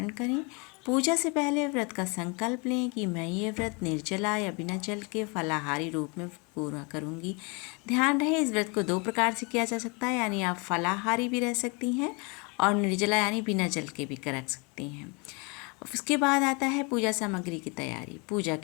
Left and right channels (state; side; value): quieter; right; 30.8 dB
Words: करें। पूजा से पहले व्रत का संकल्प लें कि मैं ये व्रत निर्जला या बिना जल के फलाहारी रूप में पूरा करूँगी। ध्यान रहे, इस व्रत को दो प्रकार से किया जा सकता है, यानी आप फलाहारी भी रह सकती हैं और निर्जला यानी बिना जल के भी कर सकती हैं। उसके बाद आता है पूजा सामग्री की तैयारी। पूजा